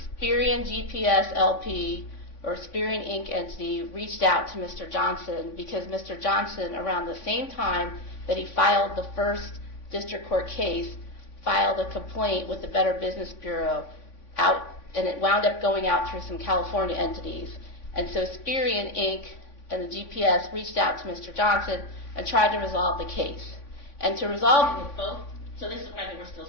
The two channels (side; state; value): right; late; 3.5 ms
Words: Spireon GPS LP, or Spireon Inc. entity, reached out to Mr. Johnson because Mr. Johnson, around the same time that he filed the first district court case, filed a complaint with the Better Business Bureau and it wound up going out through some California entities. And so Spireon Inc. and the GPS reached out to Mr. Johnson and tried to resolve the case. And to resolve... Both? So this is why they were still